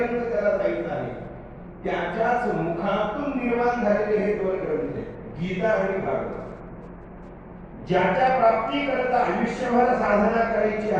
त्याला जायचं आहे, त्याच्याच मुखातून निर्माण झालेले हे 2 ग्रंथ आहेत, गीता आणि भागवत. ज्याच्या प्राप्ती करता आयुष्यभर साधना करायची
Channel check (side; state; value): both; identical; correlation 1.00